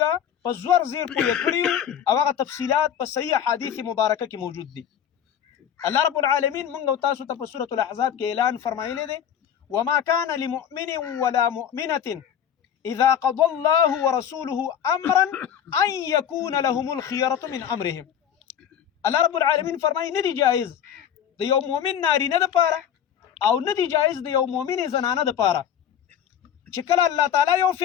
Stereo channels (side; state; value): right; quieter; 9.2 dB